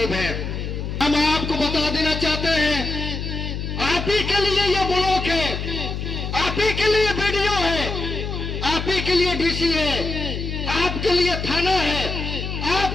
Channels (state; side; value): noise; left; hum, 4 dB below the sound